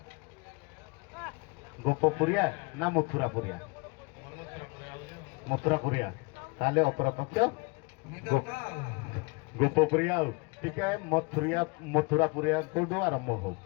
ଗୋପପୁରିଆ ନା ମଥୁରାପୁରିଆ? ମଥୁରାପୁରିଆ। ତାହେଲେ ଅପରପକ୍ଷ ଗୋପପୁରିଆ। ଆଉ ଟିକେ ମଥୁରାପୁରିଆ କୋଉଠୁ ଆରମ୍ଭ ହଉ।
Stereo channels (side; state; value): right; quieter; 29.9 dB